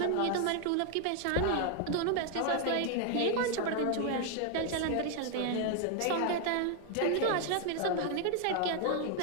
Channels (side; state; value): both; different; correlation 0.00